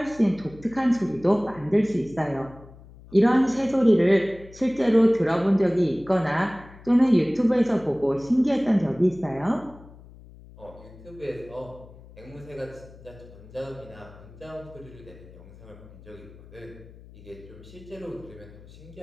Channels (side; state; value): left; noise; hum, 20 dB below the sound